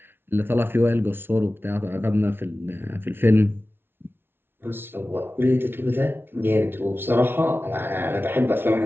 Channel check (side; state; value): left; late; 0.11 ms